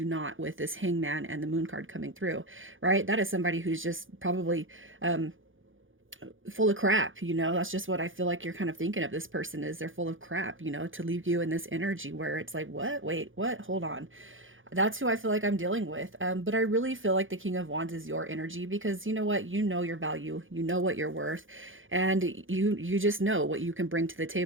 not with this hangman and the moon card coming through, right? That is somebody who's just probably um, full of crap, you know. That's just what I feel like you're kind of thinking of this person, is they're full of crap, you know, to leave you in this energy where it's like, what? Wait, what? Hold on. That's who I feel like I'm dealing with. But I really feel like the King of Wands is your energy, because you know what? You know your value, you know what you're worth, and you just know what you can bring to the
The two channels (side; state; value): left; late; 0.58 ms